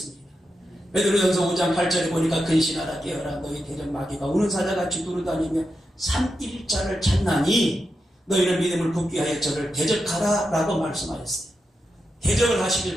베드로전서 5장 8절에 보니까 근신하라 깨어라 너희 대적 마귀가 우는 사자같이 두루다니며 삼일자를 찾나니 너희는 믿음을 굳게 하여 저를 대적하라 라고 말씀하셨어요. 대적을 하시길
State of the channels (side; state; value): both; normal; correlation 0.87